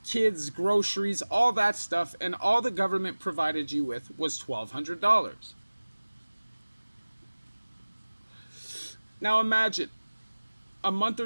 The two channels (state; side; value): inverted; both; correlation -1.00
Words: kids, groceries, all that stuff, and all the government provided you with was $1,200. Now imagine a month